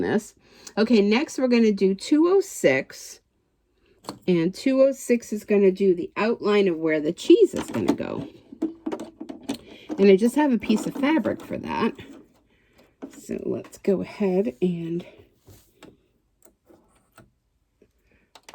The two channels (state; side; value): identical; both; correlation 1.00